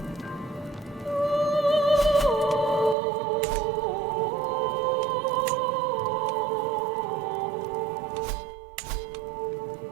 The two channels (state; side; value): drops out; left; at 3.0 s